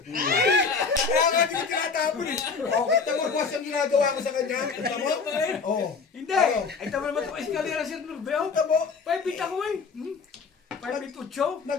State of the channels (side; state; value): right; quieter; 5.1 dB